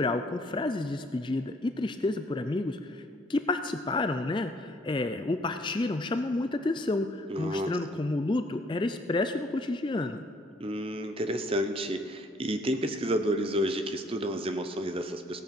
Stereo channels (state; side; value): normal; both; correlation 0.63